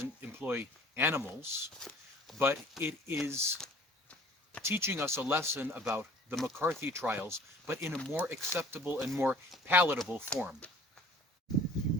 employ animals, but it is teaching us a lesson about the McCarthy trials, but in a more acceptable and more palatable form.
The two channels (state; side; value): normal; both; correlation 0.51